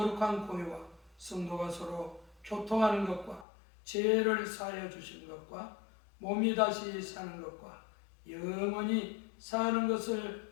공회와 성도가 서로 교통하는 것과 죄를 사하여 주시는 것과 몸이 다시 사는 것과 영원히 사는 것을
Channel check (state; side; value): drops out; right; at 3.5 s